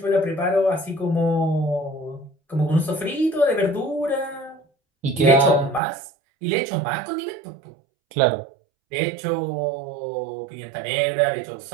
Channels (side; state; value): left; drops out; at 5.8 s